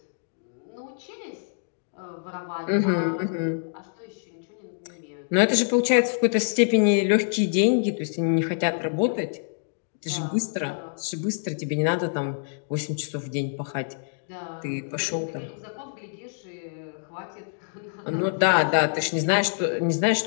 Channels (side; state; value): right; silent; digital silence